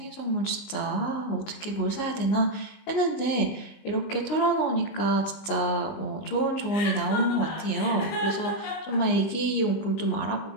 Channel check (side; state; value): right; late; 19 ms